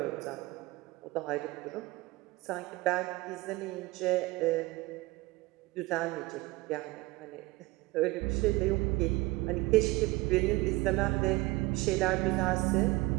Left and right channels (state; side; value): quieter; left; 21.1 dB